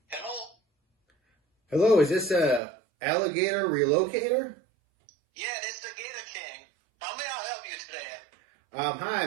Hello, is this a alligator relocator? Yeah, this is the Gator King. How may I help you today? Hi,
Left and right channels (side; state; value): left; drops out; at 2.6 s